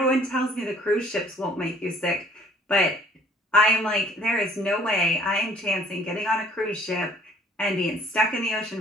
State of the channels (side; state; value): both; normal; correlation 0.56